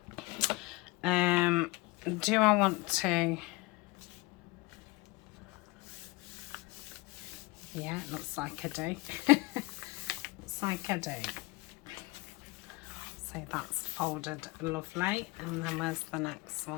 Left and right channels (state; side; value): quieter; right; 23.5 dB